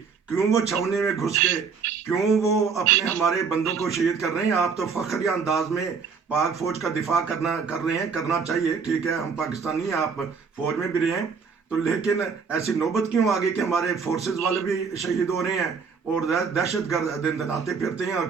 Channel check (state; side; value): quieter; left; 5.7 dB